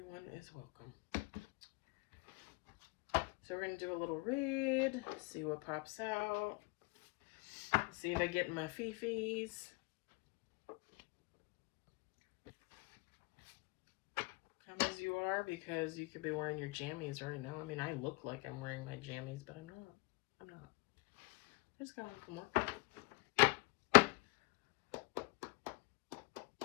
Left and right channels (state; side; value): quieter; right; 26.3 dB